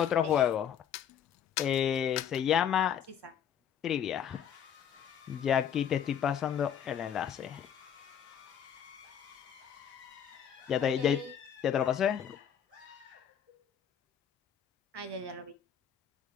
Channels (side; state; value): right; quieter; 8.8 dB